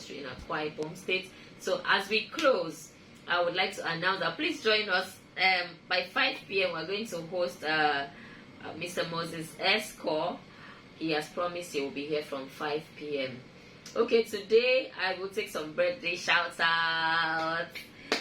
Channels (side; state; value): both; identical; correlation 1.00